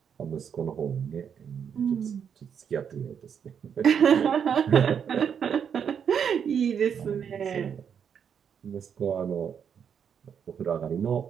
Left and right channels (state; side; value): quieter; left; 7.6 dB